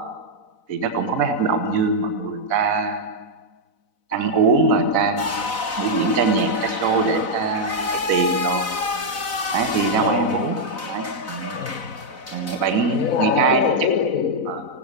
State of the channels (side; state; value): right; late; 4.0 ms